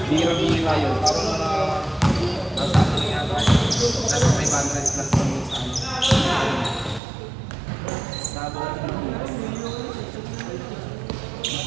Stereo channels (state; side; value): drops out; left; at 7.0 s